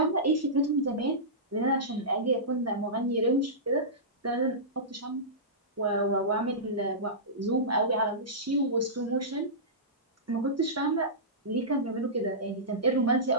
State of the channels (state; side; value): normal; both; correlation -0.18